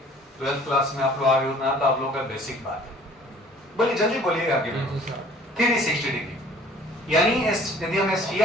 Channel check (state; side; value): normal; both; correlation 0.52